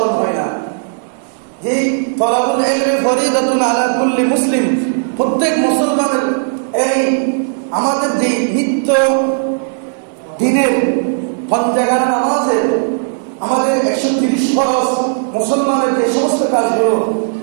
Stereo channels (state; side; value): silent; left; digital silence